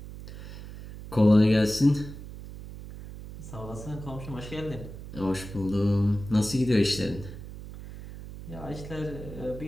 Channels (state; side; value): noise; right; hum, 12 dB below the sound